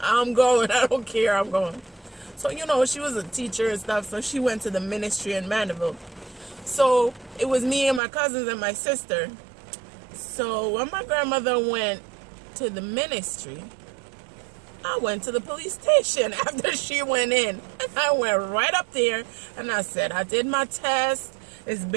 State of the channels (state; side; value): drops out; left; at 8.0 s